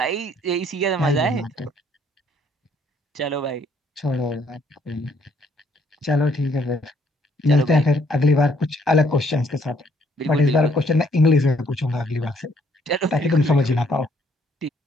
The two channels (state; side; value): normal; both; correlation 0.66